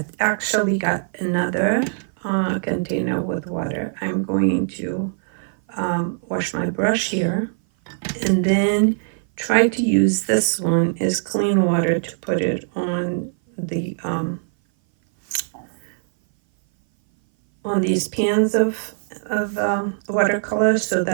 actually got another container with water. I'm going to wash my brush here and then try to use this one as clean water to put it on the on these pans of watercolor so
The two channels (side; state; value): left; silent; 58 dB below the other